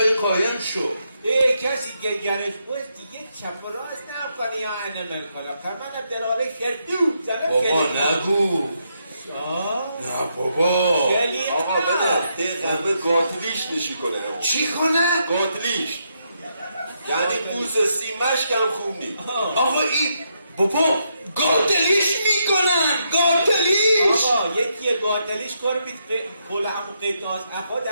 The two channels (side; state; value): both; inverted; correlation -0.79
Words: قایم شو کسی که گرش باید دیگه چپ و راست نکنه یا انمل کنم فرمان دراره شردو بابا نگو نه بابا آقا بده قلبه قاتلیش نشی کنه چی کنه؟ قاتلیش یعنی بوز سیمش کم خوب نی آقا این بابا گاتلیش میکنن گاتلیش. آقا یکی گاتلیش کار بیت کل همون قیتاز اخواد